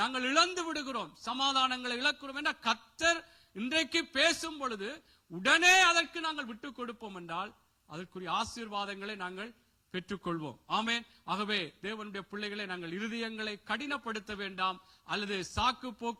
இழந்து விடுகிறோம், சமாதானங்களை இழக்கிறோம் என்ற கர்த்தர் இன்றைக்கு பேசும் பொழுது உடனே அதற்கு நாங்கள் விட்டுக் கொடுப்போம் என்றால் அதற்குரிய ஆசீர்வாதங்களை நாங்கள் பெற்றுக்கொள்வோம். ஆமென். ஆகவே தேவனுடைய பிள்ளைகளை நாங்கள் இருதயங்களை கடினப்படுத்த வேண்டாம் அல்லது சாக்கு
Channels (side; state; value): both; identical; correlation 1.00